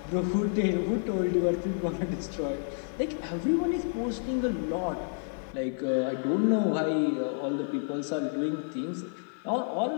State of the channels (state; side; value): silent; right; digital silence